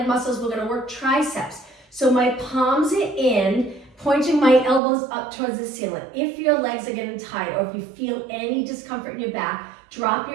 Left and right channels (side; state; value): left; drops out; at 4.8 s